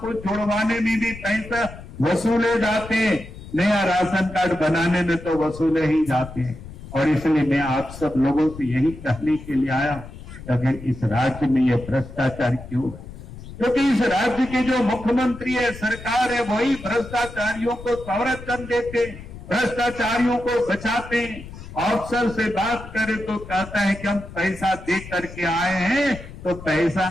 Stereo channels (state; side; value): noise; left; rumble, 14 dB below the sound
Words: जोड़वाने में भी पैसा वसूले जाते हैं। नया राशन कार्ड बनाने में तो वसूले ही जाते हैं। और इसलिए मैं आप सब लोगों से यही कहने के लिए आया हूं, अगर इस राज्य में ये भ्रष्टाचार क्यों है? क्योंकि इस राज्य के जो मुख्यमंत्री है, सरकार है, वही भ्रष्टाचारियों को संरक्षण देते, भ्रष्टाचारियों को बचाते। अफसर से बात करें तो कहता है कि हम पैसा दे करके आए हैं, तो पैसा